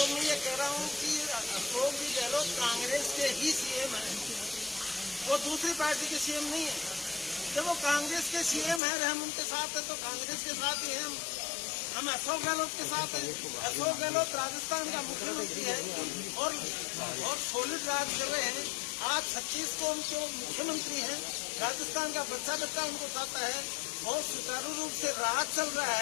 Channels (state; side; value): drops out; right; at 8.8 s